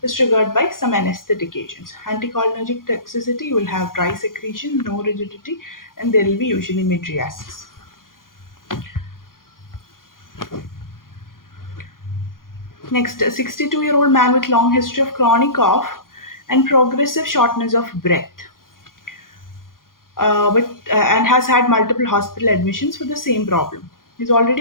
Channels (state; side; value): late; right; 0.91 ms